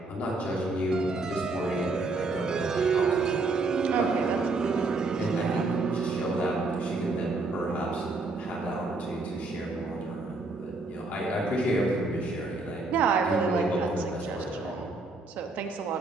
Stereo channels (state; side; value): quieter; left; 3.3 dB